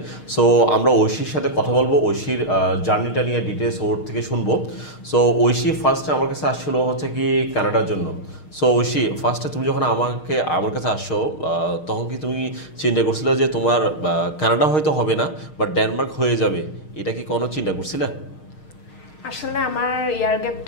সো আমরা ঐশীর সাথে কথা বলবো, ঐশীর জার্নিটা নিয়ে ডিটেলস ওর থেকে শুনবো। সো ঐশী ফার্স্টে আমার কাছে আসছিল হচ্ছে কি কানাডার জন্য। সো ঐশী, ফার্স্টে তুমি যখন আমার কাছে আসছো তখন কি তুমি চিন্তা করছিলে যে তোমার কানাডা হয়তো হবে না বাট ডেনমার্ক হয়ে যাবে, এটা কি কোনো চিন্তা করছিলে? আসলে আমার ইয়ার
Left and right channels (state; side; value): late; right; 6.5 ms